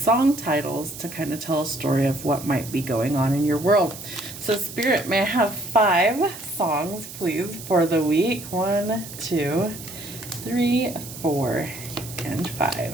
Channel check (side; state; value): right; noise; hiss, 13 dB below the sound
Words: titles to kind of tell a story of what might be going on in your world. So Spirit, may I have 5 songs, please, for the week? 1, 2, 3, 4, and